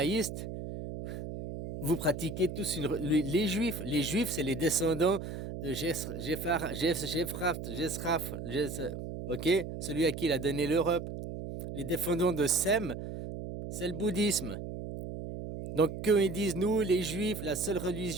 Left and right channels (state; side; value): noise; right; hum, 7 dB below the sound